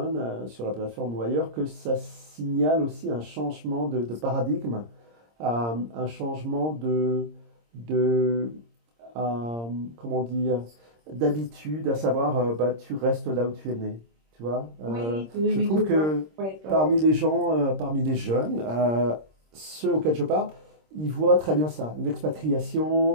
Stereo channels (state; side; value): late; left; 26 ms